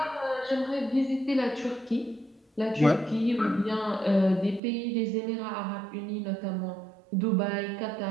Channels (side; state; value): left; drops out; at 4.6 s